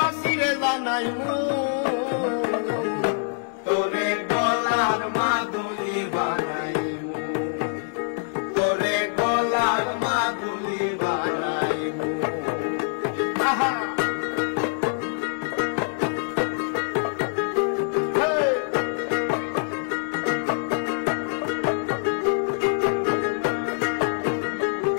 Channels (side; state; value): right; silent; digital silence